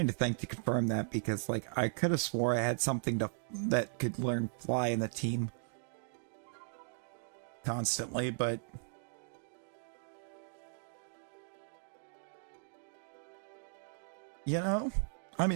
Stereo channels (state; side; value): silent; left; digital silence